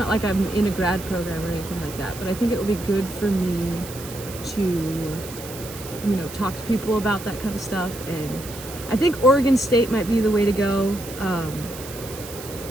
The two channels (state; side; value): noise; right; hiss, 13 dB below the sound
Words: like I'm in a grad program or anything like that, but I think it will be good for me to, you know, talk to people about that kind of stuff. And I think Oregon State might be the way to go.